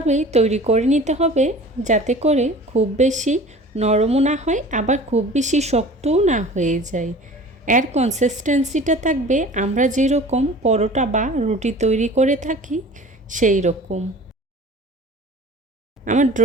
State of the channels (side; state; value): both; normal; correlation 0.43